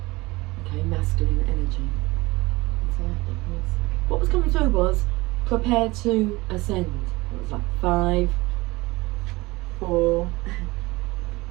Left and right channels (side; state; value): left; quieter; 21.6 dB